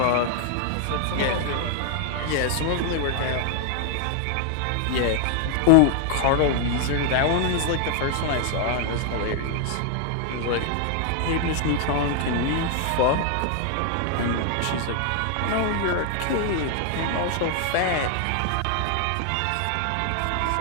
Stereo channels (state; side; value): different; both; correlation 0.00